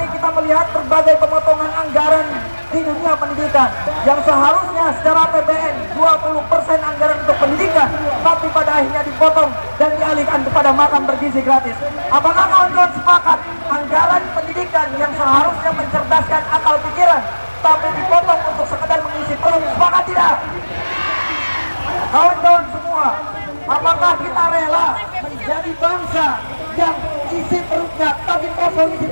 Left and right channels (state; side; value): inverted; both; correlation -1.00